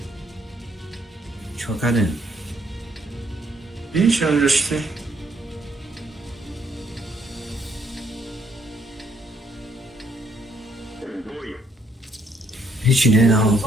Çok hadi. Видишь, он же ты. Hiç ne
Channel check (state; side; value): normal; both; correlation 0.70